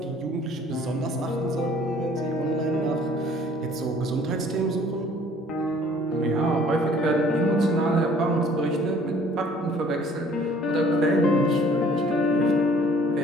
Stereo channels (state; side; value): normal; both; correlation 0.55